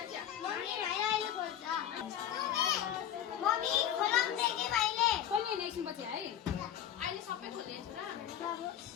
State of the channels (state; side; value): quieter; right; 10.3 dB